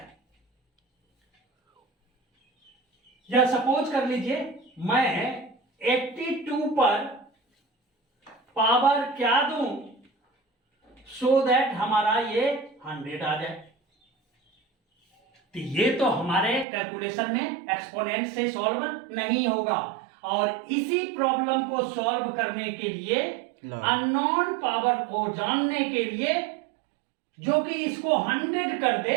या सपोज कर लीजिए मैं 82 पर पावर क्या दूं सो दैट हमारा ये 100 आ जाए। तो ये तो हमारे कैलकुलेशन में एक्सपोनेंट से सॉल्व नहीं होगा, और इसी प्रॉब्लम को सॉल्व करने के लिए अननोन पावर को जानने के लिए जो कि इसको 100 कर दे,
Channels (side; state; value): left; drops out; at 16.7 s